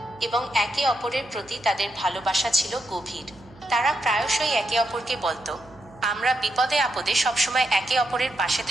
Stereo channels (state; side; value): noise; right; hum, 24 dB below the sound